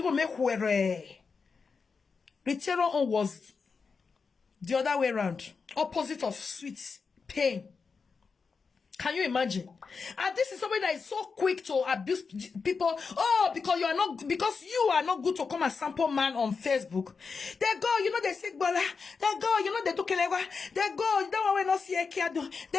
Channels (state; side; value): quieter; right; 5.1 dB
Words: go make where. Return on was the other way around. Opposite of sweet pain. Can you imagine? And this is somebody that is so quick to abuse people. Oh, because you are not good to come and sample man on Facebook. They go, you know they say bola. They go, you know they do kelewa. They go, you don't want to see a kid.